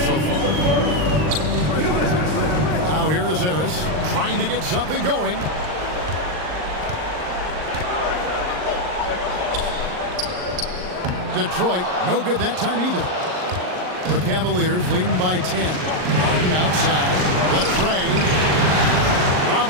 far. Now here is Harris trying to get something going. Detroit, no good that time either. The Cavaliers leading by 10. Harden outside. Latrey.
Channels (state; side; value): late; left; 39 ms